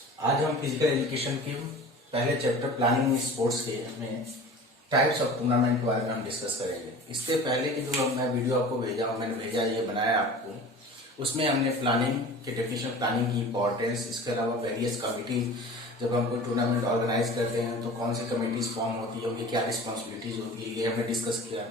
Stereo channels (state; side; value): normal; both; correlation 0.39